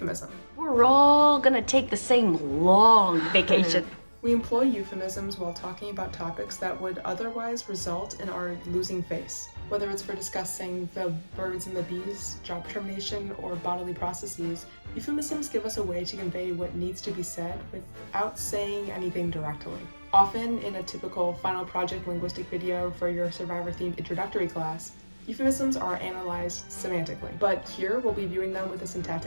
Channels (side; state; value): both; inverted; correlation -1.00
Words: We're all gonna take the same long vacation. We employ euphemisms while talking about topics that would otherwise result in our losing face. Whether it's for discussing the birds and the bees, job termination, or bodily processes, euphemisms give us a way to convey what needs to be said without saying anything directly. Often in a typical final project linguistic video for your Survivor-themed introductory class, euphemisms are analyzed semantically, but here we'll be viewing them with a